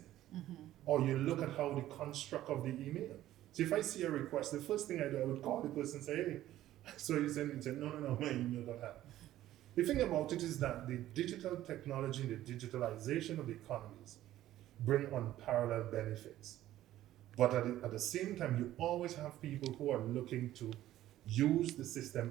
Or you look at how the construct of the email. So if I see a request, the first thing I do, I would call the person and say, hey, so you send me, say, no, my email got hacked. The thing about it is that the digital technology and the digitalization of the economies bring unparalleled benefits. But at the same time, you always have people who are looking to use the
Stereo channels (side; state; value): left; quieter; 13.8 dB